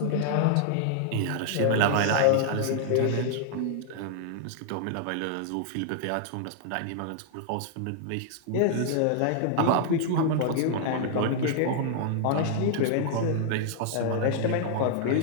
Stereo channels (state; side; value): different; both; correlation -0.01